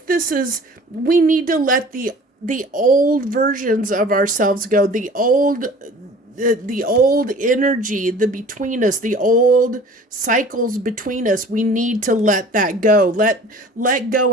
we need to let the old versions of ourselves go, the old energy, the between us, the old cycles between us. We need to let that go. Let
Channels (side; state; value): both; normal; correlation 0.46